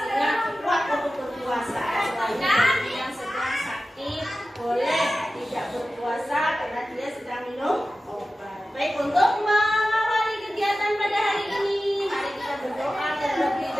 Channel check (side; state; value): both; normal; correlation 0.94